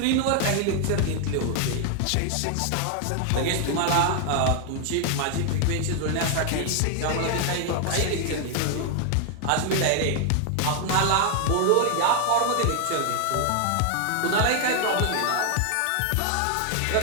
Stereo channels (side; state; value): both; different; correlation 0.00